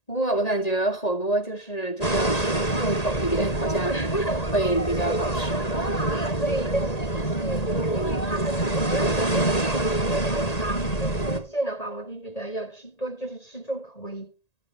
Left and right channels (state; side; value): late; right; 1.8 ms